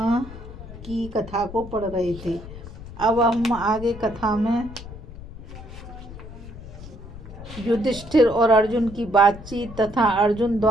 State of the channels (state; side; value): noise; left; rumble, 14 dB below the sound